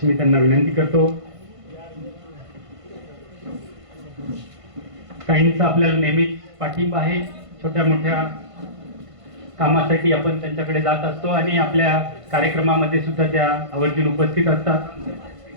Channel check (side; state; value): left; late; 1.5 ms